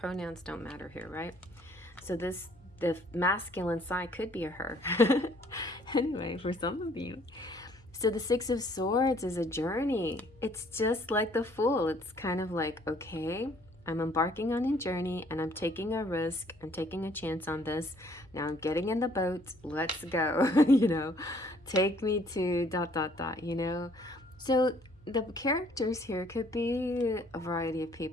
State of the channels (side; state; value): left; noise; hum, 27 dB below the sound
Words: don't matter here, right? So the masculine side could be a her. Anyway, for some of you. So the Six of Swords is a journey. It's just like the Fool. It's kind of like, okay, I'm embarking on a journey and I'm taking a risk. I'm taking a chance on this. Now I'm getting in the boat. Let's go. You know, take me to ... you know. So the characters here could be a variety of